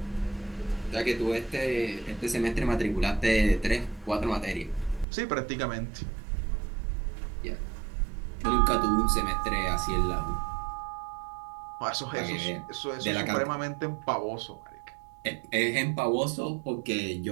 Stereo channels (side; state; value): left; drops out; at 5.1 s